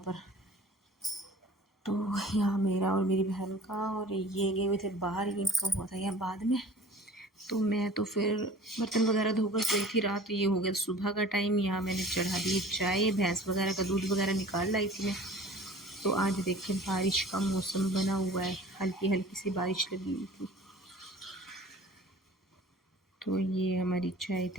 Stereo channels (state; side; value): normal; both; correlation 0.44